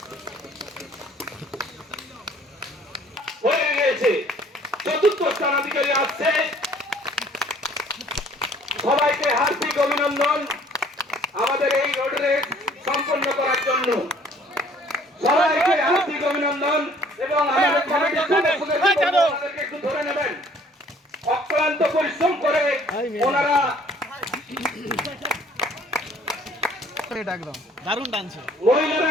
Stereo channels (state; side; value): normal; both; correlation 0.57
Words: হয়ে গিয়েছে, চতুর্থ স্থানাধিকারী আসছে। সবাইকে হার্দিক অভিনন্দন আমাদের এই রোড রেস সম্পন্ন করার জন্য। সবাইকে হার্দিক অভিনন্দন এবং আমাদের কমিটির সদস্যদেরকে একটু ধরে নেবেন। অক্লান্ত পরিশ্রম করে ওনারা দারুণ টানছে। মহিলারা